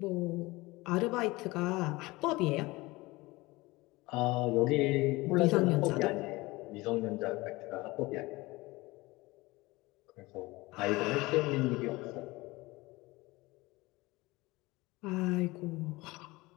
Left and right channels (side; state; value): right; quieter; 21.5 dB